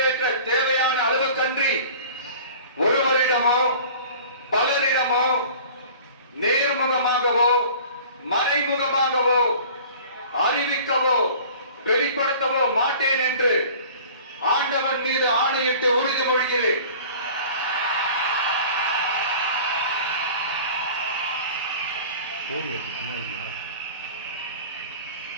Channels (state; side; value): inverted; both; correlation -0.44